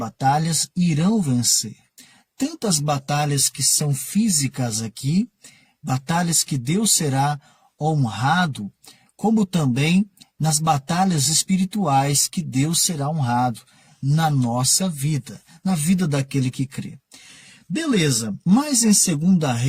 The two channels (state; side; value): identical; both; correlation 1.00